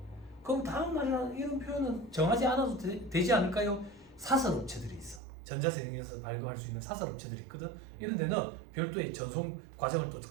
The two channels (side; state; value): left; drops out; at 5.2 s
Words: 그럼 다음 날이나 이런 표현은 정하지 않아도 되지 않을까요? 사설업체들이 있어. 전자세금에서 발급할 수 있는 사설업체들이 있거든. 이런 데는 별도의 전송 과정을 또